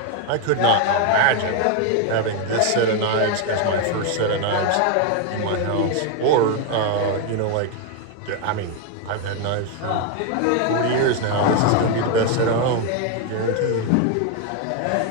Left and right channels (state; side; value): different; both; correlation 0.01